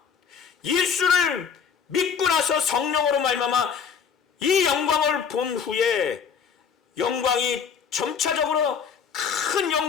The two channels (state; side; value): quieter; right; 6.7 dB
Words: 예수를 믿고 나서 성령으로 말미암아 이 영광을 본 후에 영광이 점차적으로 큰